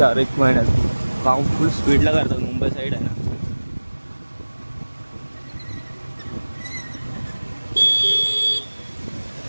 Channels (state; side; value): inverted; both; correlation -1.00